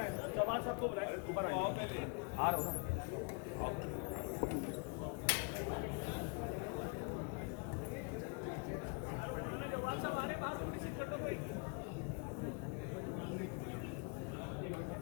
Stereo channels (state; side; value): quieter; right; 34.8 dB